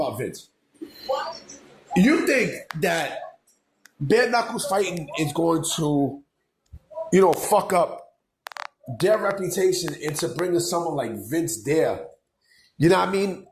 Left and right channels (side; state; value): both; identical; correlation 1.00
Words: Vince. You think that bare knuckles fighting is going to, fuck up their reputation into bringing someone like Vince there? You know what I mean?